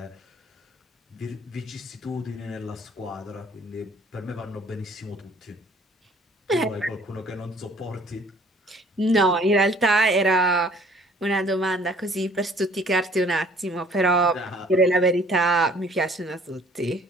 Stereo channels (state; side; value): normal; both; correlation 0.56